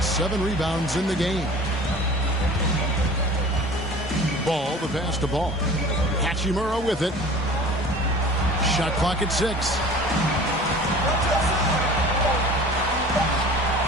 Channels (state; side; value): normal; both; correlation 0.43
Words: 7 rebounds in the game. Ball, the pass to Ball. Hachimura with it. Shot clock at 6.